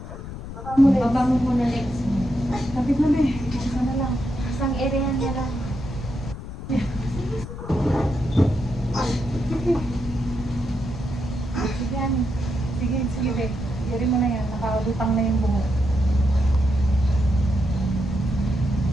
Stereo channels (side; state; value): left; noise; rumble, 10 dB below the sound